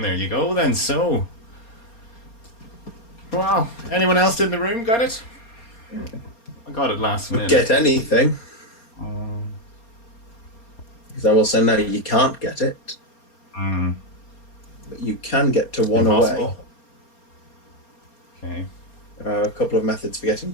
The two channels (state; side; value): late; right; 4.3 ms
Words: There you go, then. So, wow. Anyone else in the room got it? I got it last minute. Get anything. Because I will say now you can't get it. But you can get to one away. Okay. There are a couple of methods for getting